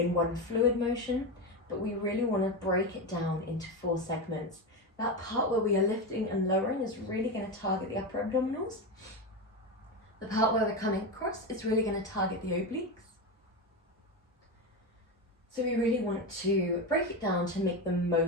one fluid motion, but we really want to break it down into four segments. That part where we are lifting and lowering is really going to target the upper abdominals. The part where we're coming across is really going to target the obliques. So we really want to break it down to make the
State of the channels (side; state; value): both; normal; correlation 0.16